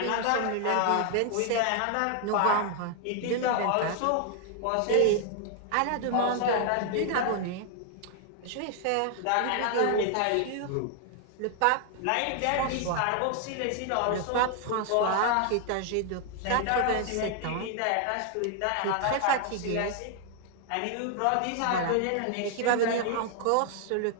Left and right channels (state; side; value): different; both; correlation 0.00